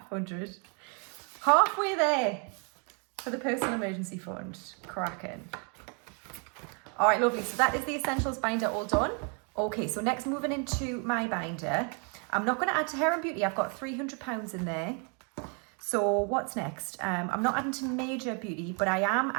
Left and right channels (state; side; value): quieter; left; 37.5 dB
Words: halfway there for the personal emergency fund, cracking. All right, lovely, so that is the essentials binder all done. Okay, so next moving into my binder. I'm not going to add to hair and beauty. I've got £300 in there. So what's next? I'm not adding to major beauty, but I am